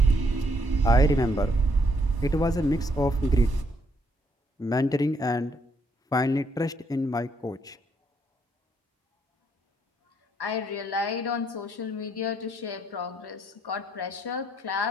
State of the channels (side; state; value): both; normal; correlation 0.72